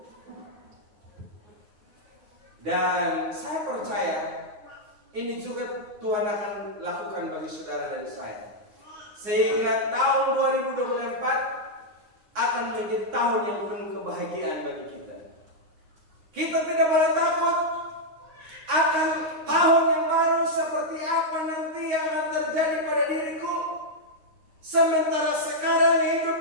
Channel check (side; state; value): left; late; 9.6 ms